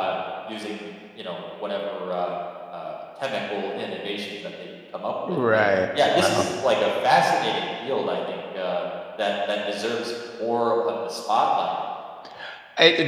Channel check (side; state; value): both; identical; correlation 1.00